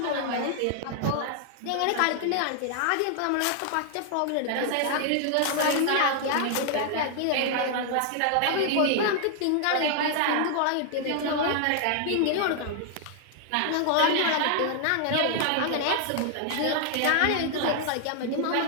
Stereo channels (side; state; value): both; different; correlation 0.00